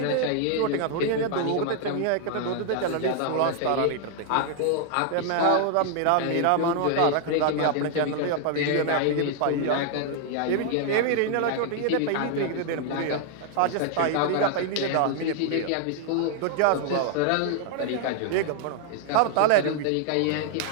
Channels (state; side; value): different; both; correlation 0.00